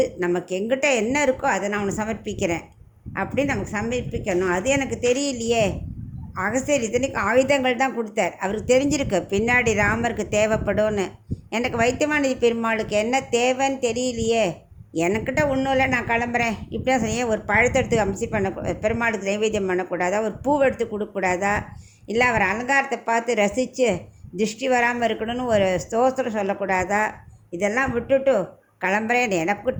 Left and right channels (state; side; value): identical; both; correlation 1.00